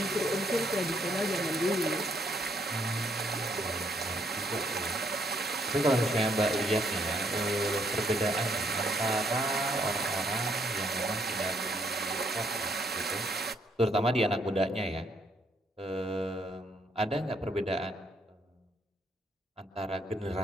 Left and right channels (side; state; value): both; normal; correlation 0.71